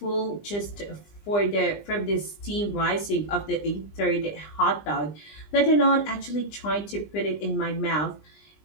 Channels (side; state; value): right; late; 20 ms